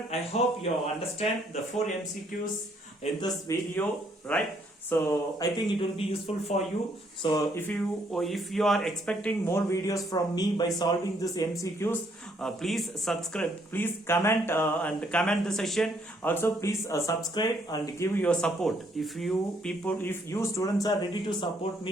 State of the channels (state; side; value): normal; both; correlation 0.69